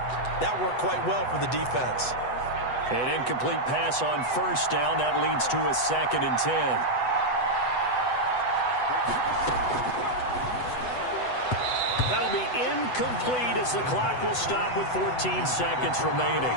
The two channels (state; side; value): late; right; 8.0 ms